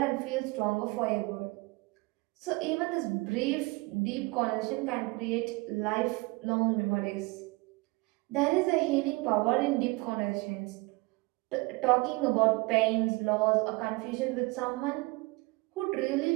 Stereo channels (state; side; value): quieter; left; 24.8 dB